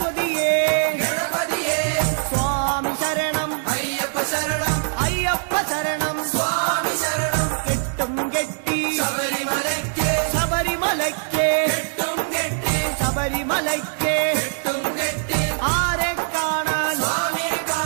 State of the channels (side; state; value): left; silent; digital silence